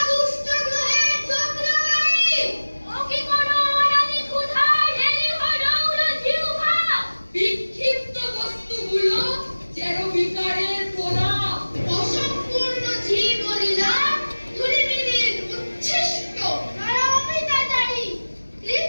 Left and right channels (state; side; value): inverted; both; correlation -1.00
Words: দুষ্ট গ্রহের চক্রধারী? ও কি কোনো অনাদি ক্ষুধার ঢেলে হরৌল জিহ্বা? বিক্ষিপ্ত বস্তুগুলো যেন বিকারের প্রলাপ, অসম্পূর্ণ জীবলীলা ধূলিমিলির উচ্ছিষ্ট নরমিতাচারী